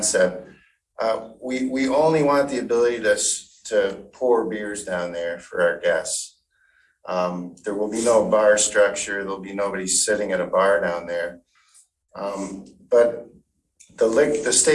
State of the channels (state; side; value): identical; both; correlation 1.00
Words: We only want the ability to pour beers down there for our guests. There will be no bar structure. There'll be nobody sitting at a bar down there. But the